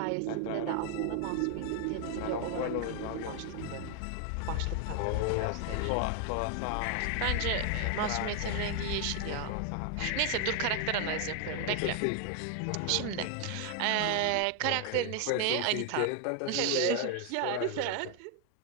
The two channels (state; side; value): different; both; correlation 0.00